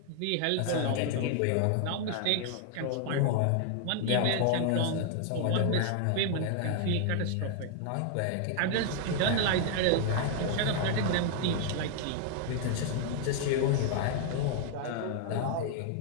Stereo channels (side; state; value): both; different; correlation 0.00